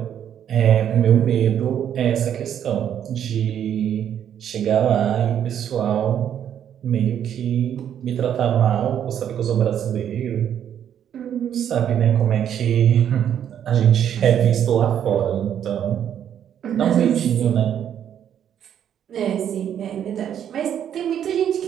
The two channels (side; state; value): left; quieter; 9.5 dB